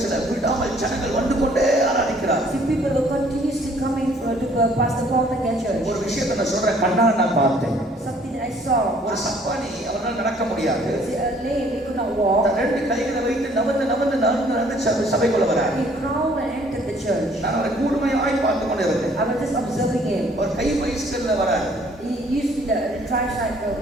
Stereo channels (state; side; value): normal; both; correlation 0.59